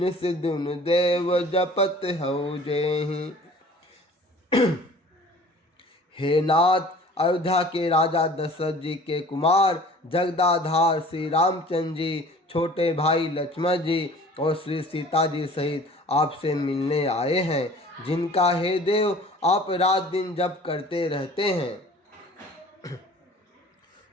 दिन देव जपत हऊ जेहि। हे नाथ, अयोध्या के राजा दशरथ जी के कुमार जगदाधार श्री रामचंद्र जी, छोटे भाई लक्ष्मण जी और श्री सीता जी सहित आपसे मिलने आए हैं, जिनका हे देव आप रात दिन जप करते रहते हैं।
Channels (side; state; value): both; normal; correlation 0.47